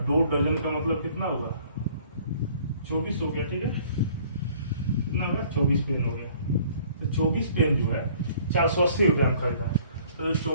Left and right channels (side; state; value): both; inverted; correlation -0.56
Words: 2 दर्जन का मतलब कितना हुआ 24 हो गया, ठीक है। कितना होगा 24 पेन हो गया। तो 24 पेन जो है 480 रुपया में खरीदा। तो जो